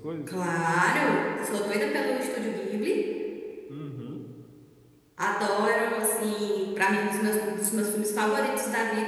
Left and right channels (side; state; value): both; identical; correlation 1.00